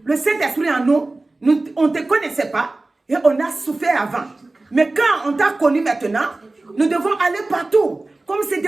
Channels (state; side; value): quieter; left; 3.1 dB